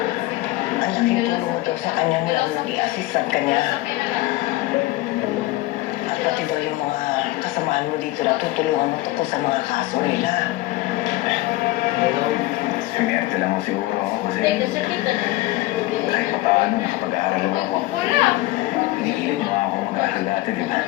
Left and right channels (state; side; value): quieter; right; 18.1 dB